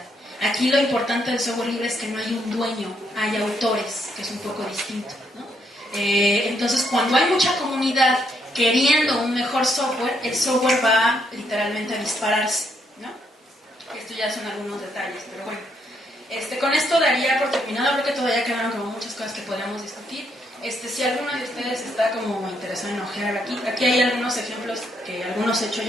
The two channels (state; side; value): normal; both; correlation 0.74